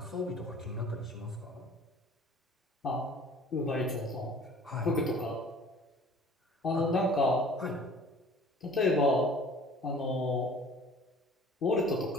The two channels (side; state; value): both; normal; correlation 0.49